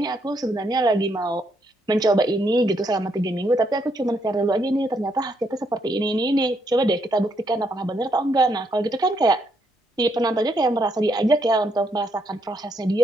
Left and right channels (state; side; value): normal; both; correlation 0.75